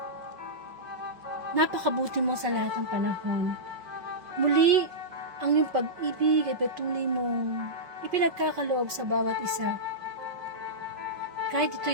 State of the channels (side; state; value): left; late; 5.4 ms